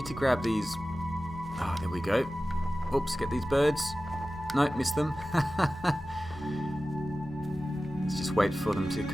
to grab these. Ah, there we go. Oops, get these birds. No, missed them. Let's just wait for them to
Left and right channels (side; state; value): both; normal; correlation 0.96